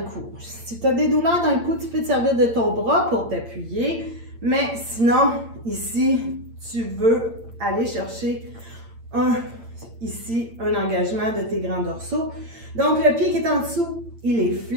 cou. Si tu as des douleurs dans le cou, tu peux te servir de ton bras pour t'appuyer. Mais sinon, ici, tu veux aller chercher ici, un engagement de tes grands dorsaux. Donc, le pied qui est en dessous, il est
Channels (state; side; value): late; left; 8.8 ms